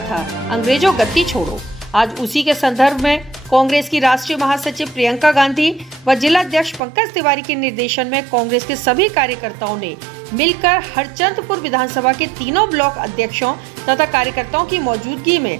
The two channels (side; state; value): left; drops out; at 6.8 s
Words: था, अंग्रेजों गद्दी छोड़ो। आज उसी के संदर्भ में कांग्रेस की राष्ट्रीय महासचिव प्रियंका गांधी व जिला अध्यक्ष पंकज तिवारी के निर्देशन में कांग्रेस के सभी कार्यकर्ताओं ने मिलकर हरचंदपुर विधानसभा के तीनों ब्लॉक अध्यक्षों तथा कार्यकर्ताओं की मौजूदगी में